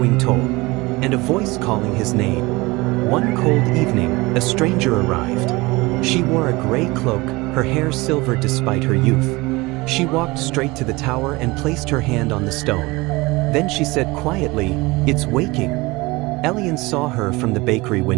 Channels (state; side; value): quieter; left; 22.7 dB